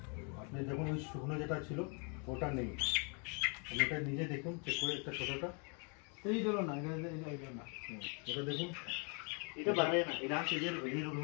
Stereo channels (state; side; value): quieter; right; 36.1 dB